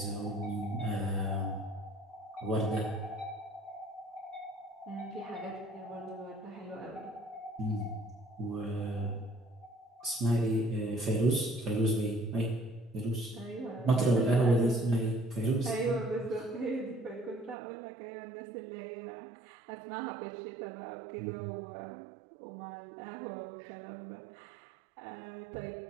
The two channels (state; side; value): drops out; left; at 17.6 s